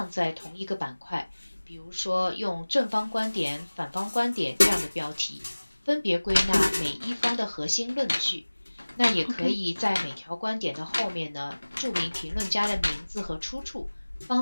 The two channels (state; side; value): inverted; both; correlation -1.00